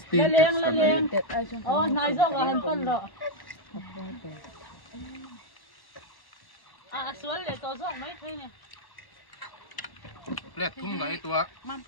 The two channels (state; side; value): late; right; 1.1 ms